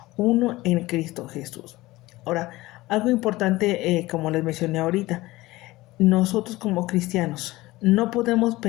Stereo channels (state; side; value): quieter; right; 19.0 dB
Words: uno en Cristo Jesús. Ahora, algo importante, como les mencioné ahorita, nosotros como cristianos no podemos